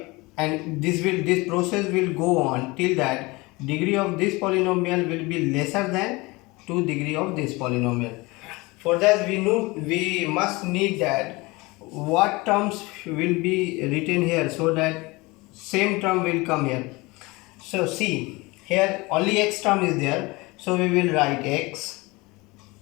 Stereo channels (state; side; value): quieter; right; 23.6 dB